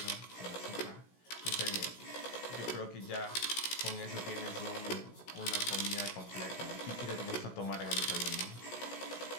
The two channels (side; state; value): right; late; 16 ms